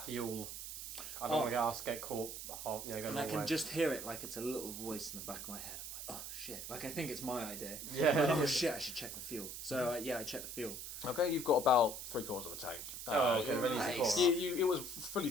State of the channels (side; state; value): right; noise; hiss, 8 dB below the sound